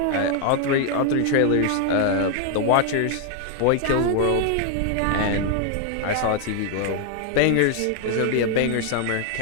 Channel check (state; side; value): different; both; correlation 0.00